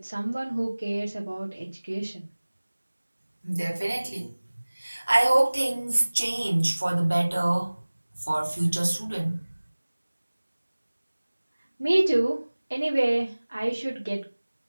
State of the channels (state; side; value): inverted; both; correlation -1.00